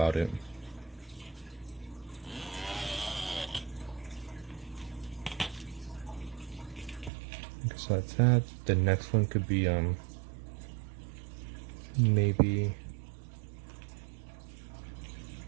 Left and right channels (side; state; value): left; drops out; at 7.1 s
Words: it. Okay, so that's that. The next one could be maybe